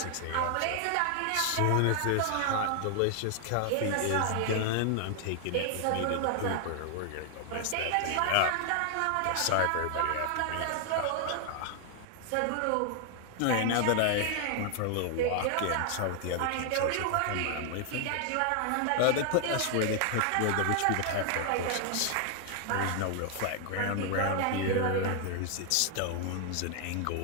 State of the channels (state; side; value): different; both; correlation 0.00